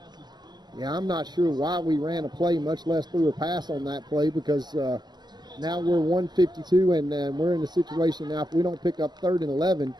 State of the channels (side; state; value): left; late; 0.21 ms